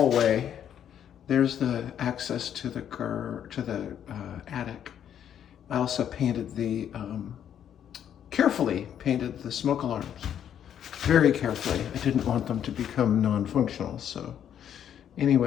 There's the access to the attic. I also painted carefully painted the smoke alarms. Very carefully. I didn't want them to become non-functional. So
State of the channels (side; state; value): right; quieter; 9.5 dB